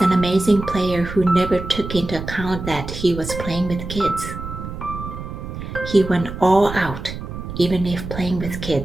amazing player who never took into account that he was playing with kids. He went all out, even if playing with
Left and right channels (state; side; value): noise; right; rumble, 8 dB below the sound